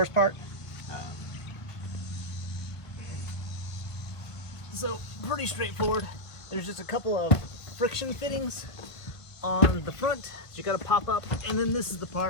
part. So pretty straightforward. There's just a couple of friction fittings on the front that you gotta pop up, and then this is the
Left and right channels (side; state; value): right; late; 1.5 ms